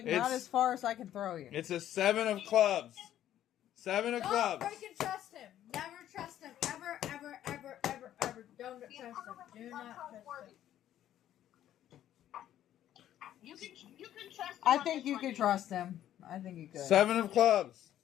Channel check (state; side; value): quieter; right; 11.8 dB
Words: It's- not as far as I can throw you. It's a 7 of clubs. 7 of Don't clubs. freaking trust him. Never trust him. Ever, ever, ever, ever, ever. Don't trust him. Do not trust him. You can trust him. I on think this you one, could Neener. trust him. I think you could. 7 of clubs.